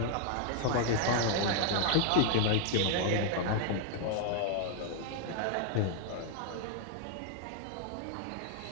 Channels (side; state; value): both; different; correlation 0.00